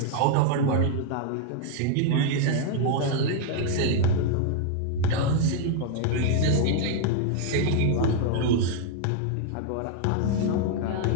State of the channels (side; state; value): both; different; correlation 0.00